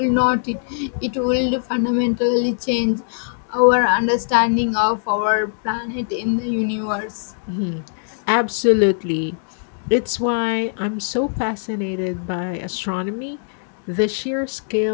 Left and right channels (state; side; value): silent; right; digital silence